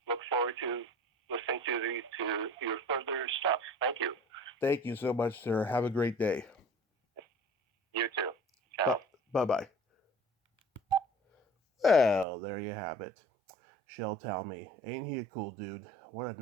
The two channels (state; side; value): drops out; left; at 12.2 s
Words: look forward to listening to your further stuff. Thank you. Thank you so much, sir. Have a great day. You too. Ciao. Bye-bye. Well, there you have it. Shel Talmy. Ain't he a cool dude? What a